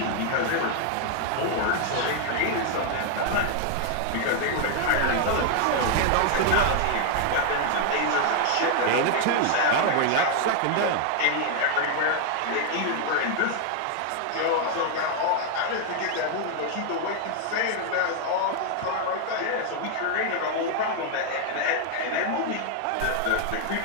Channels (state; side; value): different; both; correlation 0.00